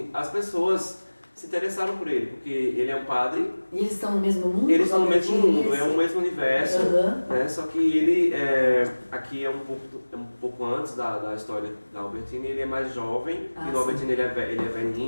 as pessoas se interessaram por ele, porque ele é um padre. E eles estão no mesmo mundo? Eles estão no mesmo mundo, é o mesmo universo, né? Só que ele aqui é um pouco antes da história da Albertini, ele é mais jovem, e no Albertini ele é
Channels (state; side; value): inverted; both; correlation -1.00